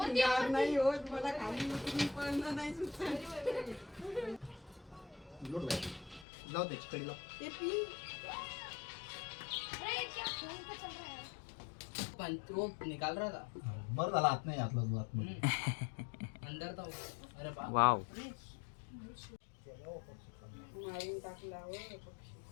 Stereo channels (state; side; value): drops out; right; at 6.2 s